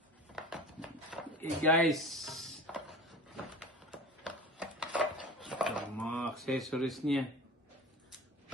Okay guys. Ito, mga accessories niya.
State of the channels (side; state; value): both; normal; correlation 0.36